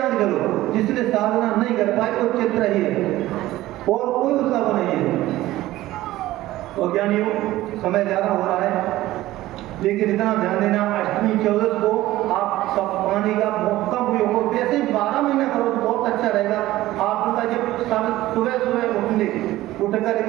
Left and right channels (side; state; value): left; quieter; 16.2 dB